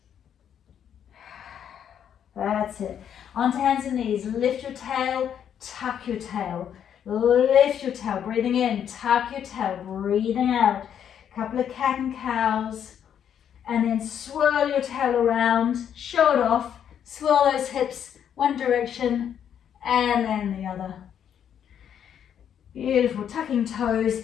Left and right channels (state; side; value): quieter; right; 9.0 dB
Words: That's it. Onto hands and knees. Lift your tail, tuck your tail. Lift your tail. Breathing in, tuck your tail. Breathing out. Couple of cat and cows. And then swirl your tail around. Show it off. Swirl those hips one direction and then the other. Beautiful. Tucking toes.